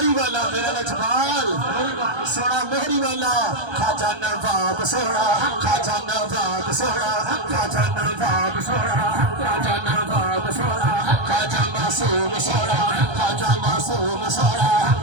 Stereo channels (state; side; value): late; left; 1.3 ms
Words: वाला मेरा लजपाल सोना मोहरी वाला खाजा नवाब सोना खाजा नवाब सोना खाजा नवाब सोना खाजा नवाब सोना खाजा मासूम सोना खाजा मासूम सोना